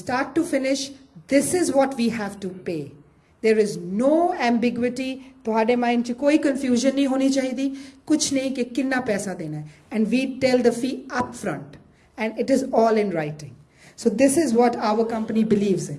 to finish this is what we have to pay. There is no ambiguity. ਤੁਹਾਡੇ mind 'ਚ ਕੋਈ confusion ਨਹੀਂ ਹੋਣੀ ਚਾਹੀਦੀ, ਕੁਛ ਨਹੀਂ ਕਿ ਕਿੰਨਾ ਪੈਸਾ ਦੇਣਾ ਹੈ, and we tell the fee up front and it is all in writing. So this is what our company believes in.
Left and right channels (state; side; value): identical; both; correlation 1.00